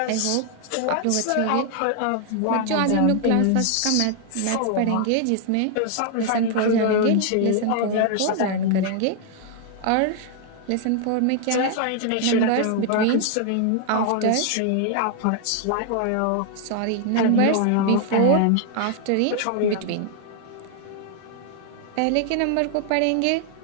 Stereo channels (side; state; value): both; different; correlation 0.00